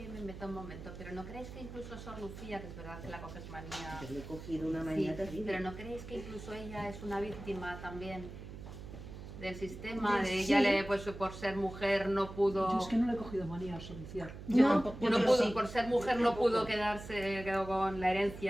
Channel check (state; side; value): noise; right; hum, 12 dB below the sound